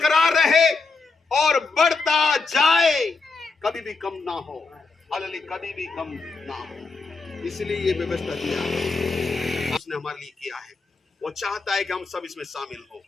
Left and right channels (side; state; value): right; quieter; 4.1 dB